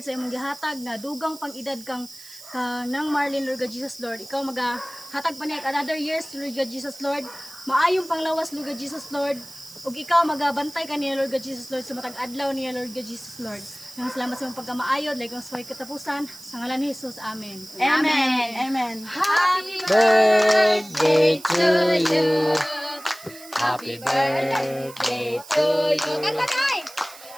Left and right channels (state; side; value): noise; right; hiss, 18 dB below the sound